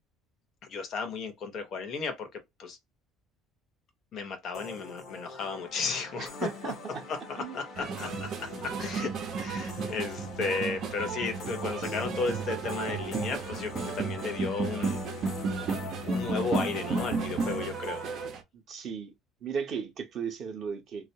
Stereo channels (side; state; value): both; normal; correlation 0.58